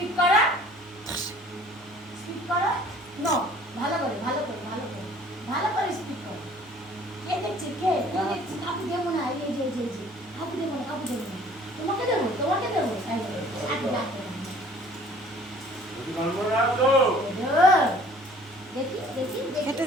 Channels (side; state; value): both; normal; correlation 0.53